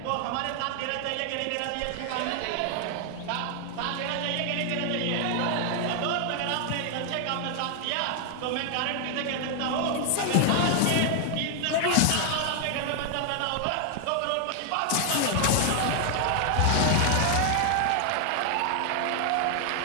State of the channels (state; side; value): different; both; correlation 0.00